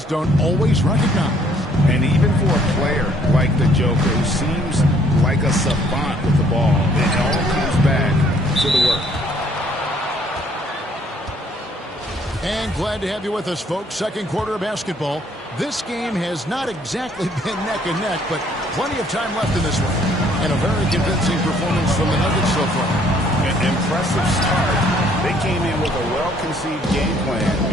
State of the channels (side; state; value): both; normal; correlation 0.63